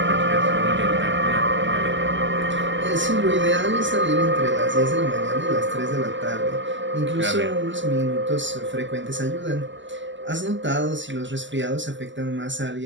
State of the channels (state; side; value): late; left; 0.54 ms